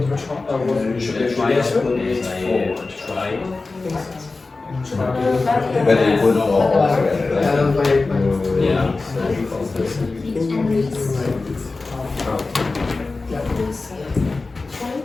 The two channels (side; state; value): right; quieter; 3.6 dB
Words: You should Try yes. try. But it would all yeah.